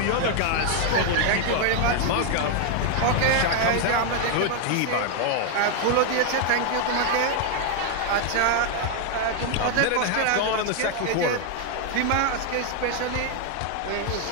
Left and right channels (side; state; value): both; different; correlation 0.00